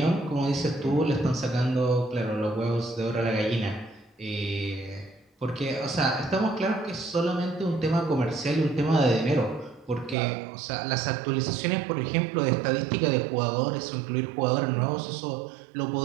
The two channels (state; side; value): drops out; left; at 10.2 s